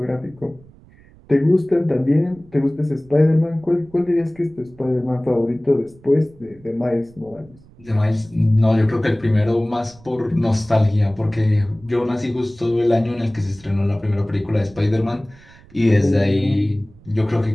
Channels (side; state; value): right; noise; rumble, 25 dB below the sound